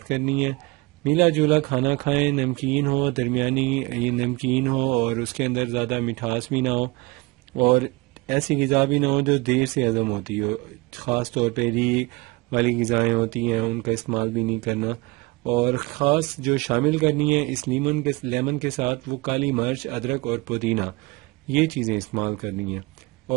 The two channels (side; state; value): left; quieter; 24.1 dB